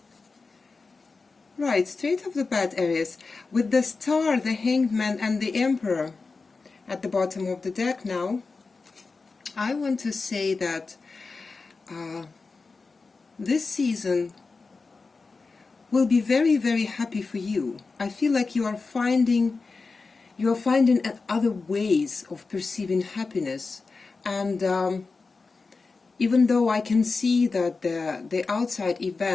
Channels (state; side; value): quieter; right; 4.2 dB